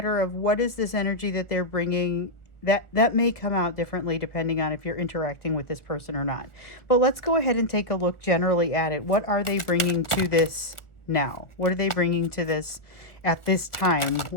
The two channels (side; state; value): right; late; 1.1 ms